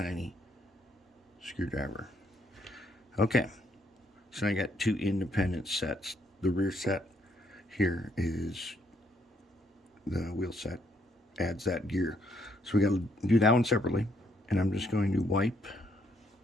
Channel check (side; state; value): both; normal; correlation 0.71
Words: screwdriver. Okay, so I got two independent sets. The rear set here is the wheel set, adds that gear. So we got to do that one separately, and I'm just going to wipe.